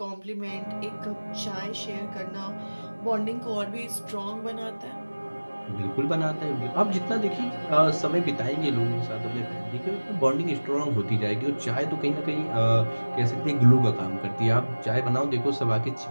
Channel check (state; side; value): inverted; both; correlation -1.00